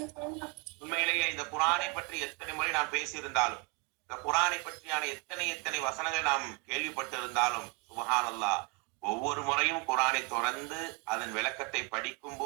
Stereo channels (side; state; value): left; quieter; 30.7 dB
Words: உண்மையிலேயே இந்த குரானை பற்றி எத்தனை முறை நாம் பேசியிருந்தாலும், இந்த குரானை பற்றியான எத்தனை வசனங்கள் நாம் கேள்விப்பட்டு இருந்தாலும், சுப்ஹானல்லாஹ், ஒவ்வொரு முறையும் குரானை தொடர்ந்து அதன் விளக்கத்தை படிக்கும்